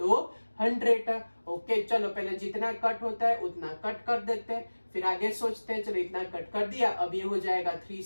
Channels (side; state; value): both; inverted; correlation -1.00